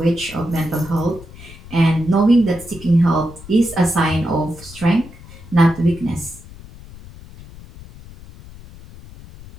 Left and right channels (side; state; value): left; noise; rumble, 18 dB below the sound